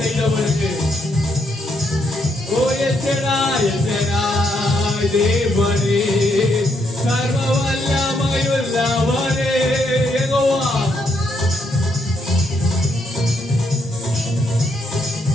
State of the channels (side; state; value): both; normal; correlation 0.76